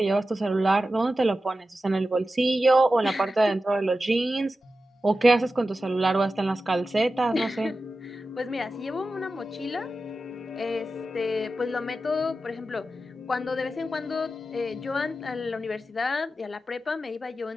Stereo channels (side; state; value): both; normal; correlation 0.92